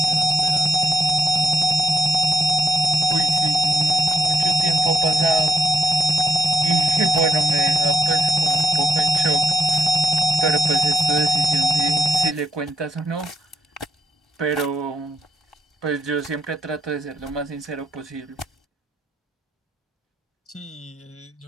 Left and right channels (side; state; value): both; normal; correlation 0.72